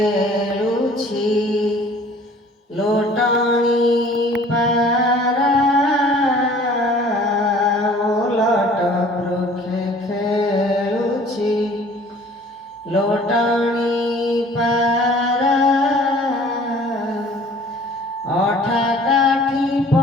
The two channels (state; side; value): normal; both; correlation 0.51